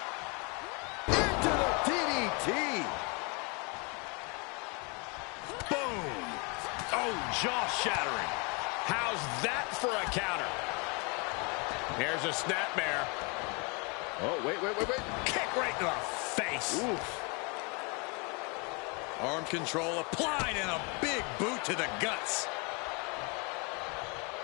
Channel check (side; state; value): right; quieter; 31.9 dB